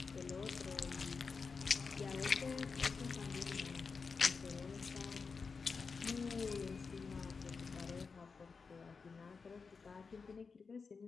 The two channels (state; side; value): quieter; right; 5.0 dB